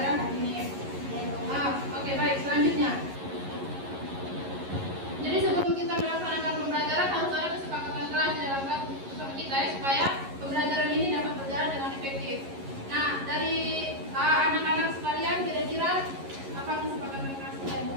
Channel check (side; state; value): left; late; 11 ms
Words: hari ini. Oke, baik. Selanjutnya. Jadi sebelum kita melaksanakan pembelajaran harus ada kesepakatan kelas di dalam kelas bersama kita ya, supaya pembelajaran ini dapat berjalan dengan efektif. Nah, dari anak-anak sekalian kira-kira apa kesepakatan kelas kita yang